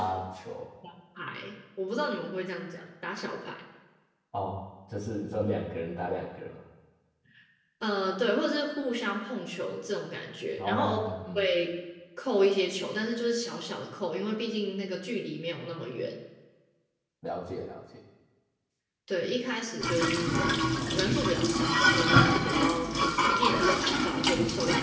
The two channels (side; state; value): both; identical; correlation 1.00